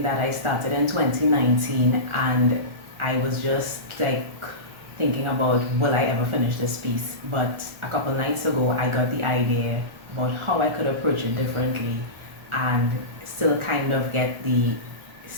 that I started in 2019 and I was just like thinking about will I ever finish this piece, but a couple nights ago I got the idea about how I could approach it differently and still kind of get the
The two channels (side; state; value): left; late; 1.4 ms